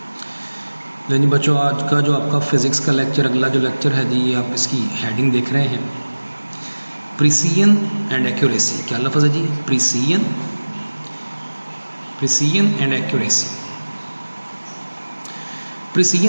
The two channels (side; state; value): both; inverted; correlation -1.00